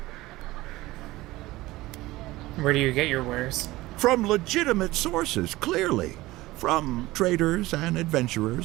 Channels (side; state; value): left; quieter; 18.5 dB